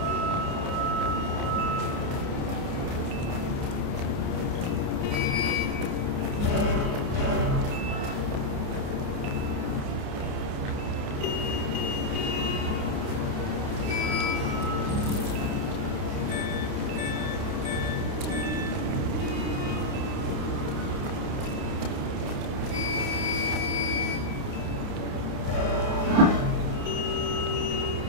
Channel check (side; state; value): left; late; 29 ms